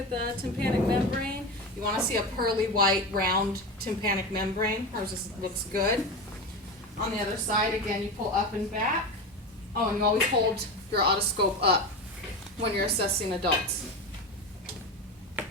the tympanic membrane. You want to see a pearly white round tympanic membrane. Hers just looks good. On the other side, again, you pull up and back. Oh, and you always hold your otoscope up when you're assessing adults.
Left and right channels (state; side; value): normal; both; correlation 0.22